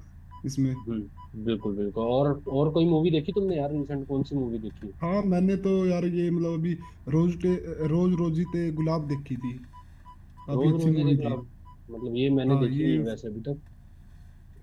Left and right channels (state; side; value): identical; both; correlation 1.00